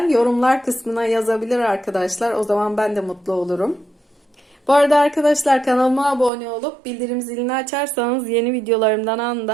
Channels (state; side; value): drops out; left; at 6.3 s